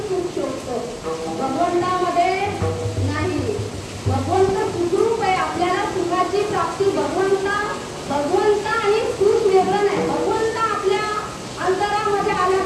सुख शोधतो, भगवंतामध्ये नाही. भगवंत सुखरूप आहे. आपल्याला सुखाची प्राप्ती भगवंत आणि सुख वेगळं नाही. भगवंत आपल्या अंतरामध्ये आला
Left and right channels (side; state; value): both; identical; correlation 1.00